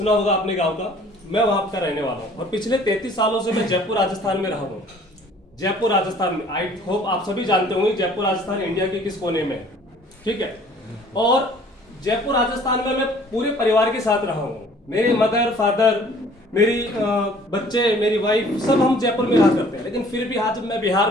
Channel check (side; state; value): both; normal; correlation 0.54